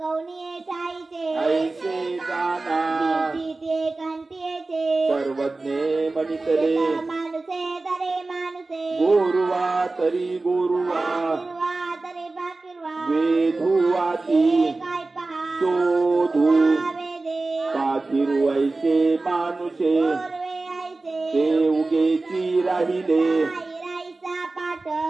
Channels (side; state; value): left; quieter; 3.4 dB